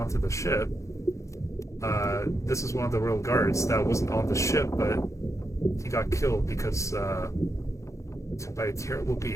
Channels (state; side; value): late; right; 0.15 ms